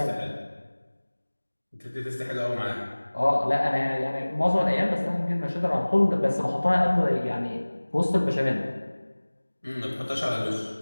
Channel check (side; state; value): both; inverted; correlation -1.00